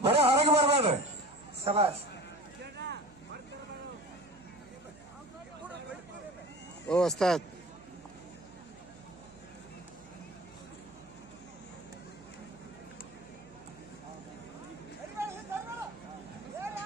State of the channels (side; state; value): right; noise; hum, 25 dB below the sound